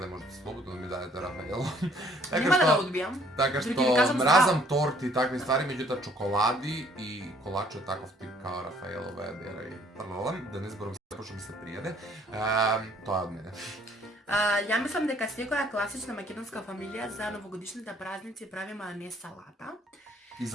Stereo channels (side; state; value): both; normal; correlation 0.61